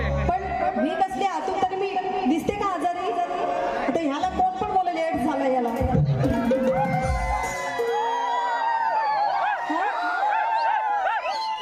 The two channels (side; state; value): both; identical; correlation 1.00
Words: पण मी कसली आतून तरी मी दिसते का आजारी? आता ह्याला कोण पण बोल लेट झाला याला.